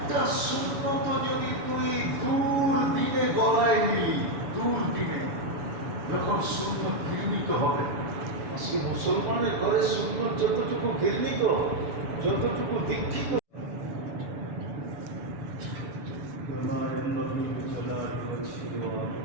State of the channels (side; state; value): left; late; 7.0 ms